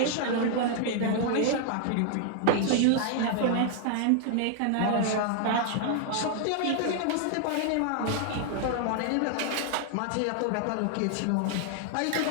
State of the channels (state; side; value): different; both; correlation 0.00